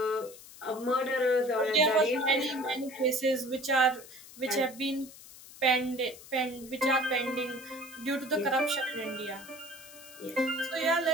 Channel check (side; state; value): left; noise; hiss, 18 dB below the sound